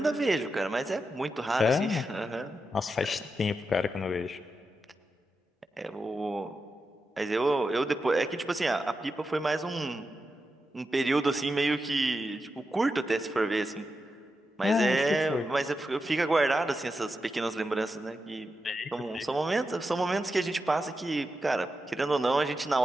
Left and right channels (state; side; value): normal; both; correlation 0.88